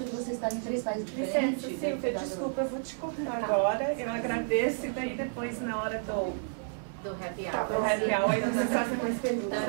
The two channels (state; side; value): silent; left; 57 dB below the other